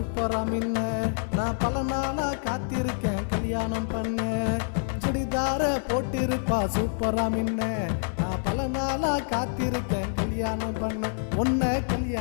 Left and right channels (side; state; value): right; silent; 60 dB below the other